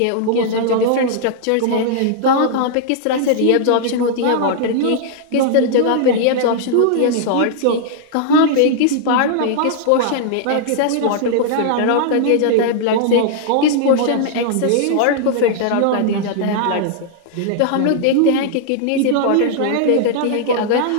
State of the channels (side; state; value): both; different; correlation -0.01